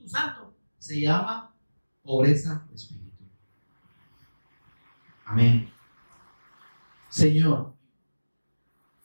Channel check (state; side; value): inverted; both; correlation -1.00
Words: Santo se llama pobreza de espíritu. Amén. Señor,